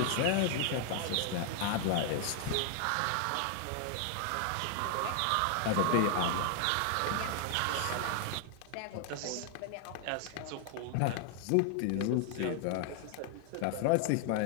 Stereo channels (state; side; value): different; both; correlation 0.00